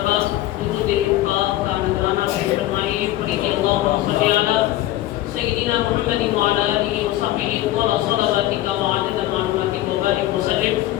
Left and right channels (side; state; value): right; quieter; 15.1 dB